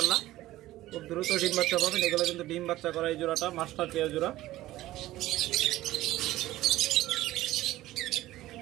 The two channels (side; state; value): left; quieter; 15.9 dB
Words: খুব দ্রুত ডিম বাচ্চা পাবেন। এগুলো কিন্তু ডিম বাচ্চা করা এই জোড়াটা মাস্টার পেয়ার জোড়া।